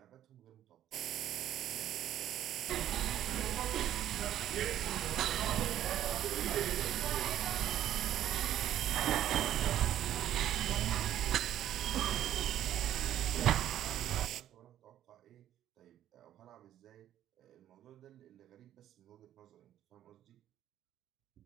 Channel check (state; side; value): quieter; left; 11.7 dB